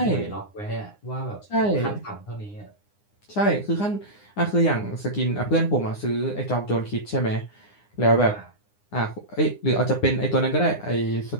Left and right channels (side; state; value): right; late; 9.8 ms